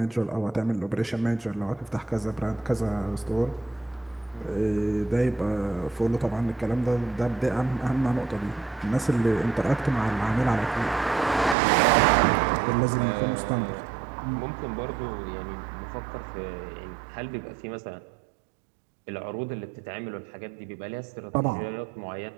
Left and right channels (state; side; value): drops out; left; at 11.6 s